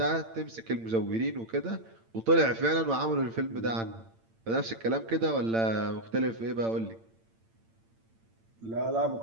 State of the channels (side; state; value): left; late; 8.9 ms